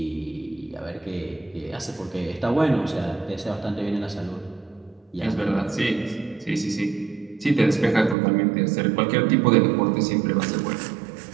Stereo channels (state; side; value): drops out; left; at 8.2 s